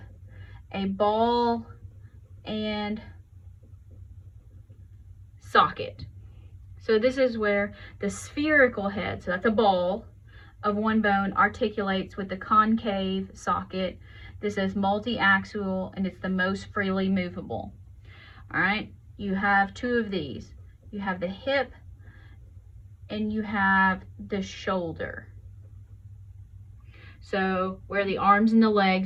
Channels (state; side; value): identical; both; correlation 1.00